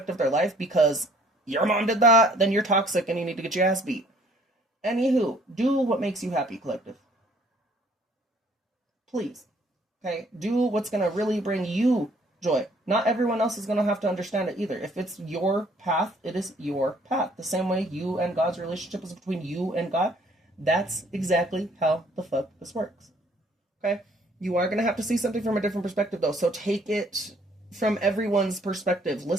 of their life because your mom did that, then you're toxic and you need to get your ass beat. Anywho, do what makes you happy, collective. Please. Okay? Do what's going to really bring you joy. Not everyone else is going to have to understand it either. If it's your path, it is your path. The same way you and God's relationship is between you and God, that's exactly how the fuck this works. Okay? You are going to have to see something from a different perspective, though. So take it from everyone's perspective.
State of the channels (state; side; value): normal; both; correlation 0.60